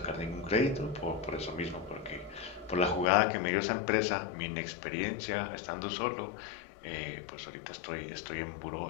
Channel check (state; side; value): drops out; right; at 3.1 s